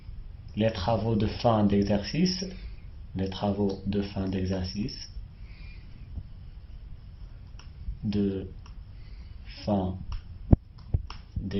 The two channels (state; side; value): identical; both; correlation 1.00